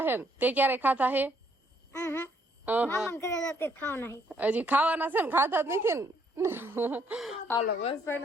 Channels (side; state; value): both; normal; correlation 0.69